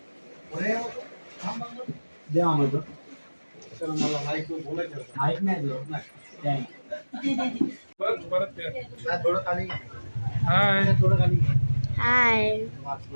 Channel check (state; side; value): inverted; both; correlation -1.00